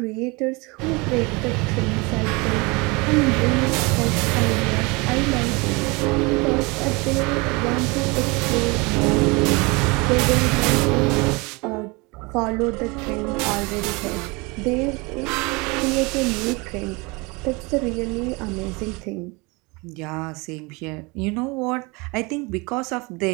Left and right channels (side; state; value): left; quieter; 26.9 dB